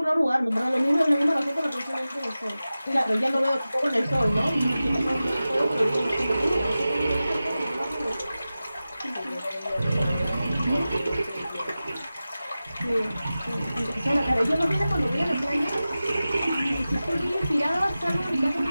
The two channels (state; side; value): inverted; both; correlation -0.95